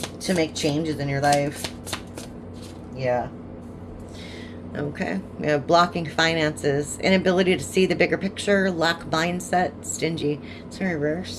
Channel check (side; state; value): both; identical; correlation 1.00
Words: to make changes in your life. Yeah. Okay, we have blocking finances, inability to see the bigger picture, lack mindset, stingy. It's in